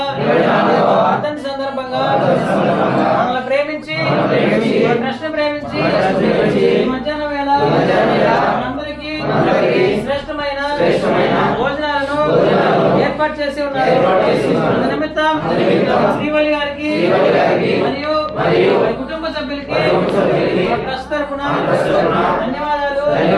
వర్ధంతి సందర్భంగా మనల్ని ప్రేమించి కృష్ణ ప్రేమించి మధ్యాహ్నం వేళ మనందరికీ శ్రేష్టమైన భోజనాలను ఏర్పాటు చేసి ఉన్నారు. నిమిత్తం శ్రీవల్లి గారికి మరియు కుటుంబ సభ్యులకి ట్రస్ట్ తరఫున ధన్యవాదాలు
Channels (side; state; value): both; identical; correlation 1.00